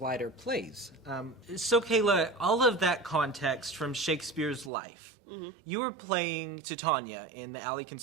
plays. So Kayla, all of that context from Shakespeare's life, you were playing Titania in the Alley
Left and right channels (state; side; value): drops out; left; at 4.7 s